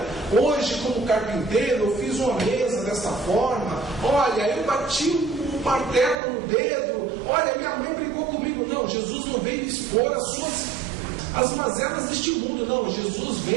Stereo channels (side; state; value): left; drops out; at 6.2 s